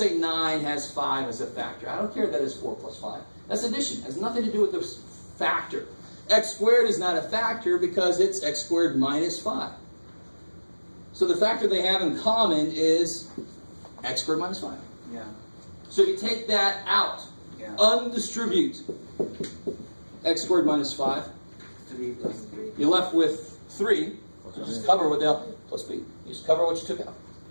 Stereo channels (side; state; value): both; inverted; correlation -1.00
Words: 9 has 5 as a factor. I don't care that it's 4 plus 5. That's addition. It has nothing to do with the factor. X squared is not a factor because it's x squared minus 5. So the factor they have in common is x squared minus 5. Yeah. So you take that out. Yeah. Undistribute x squared minus 5. 3 plus 3. You're left with 3. So just cover what the plus b. You just cover what you took out.